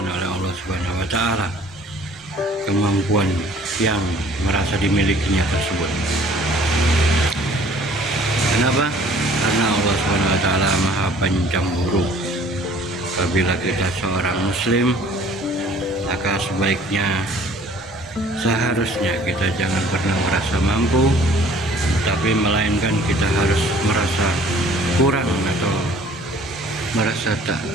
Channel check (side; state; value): both; normal; correlation 0.54